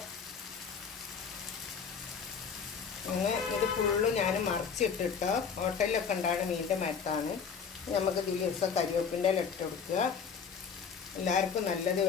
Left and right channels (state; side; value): quieter; right; 6.3 dB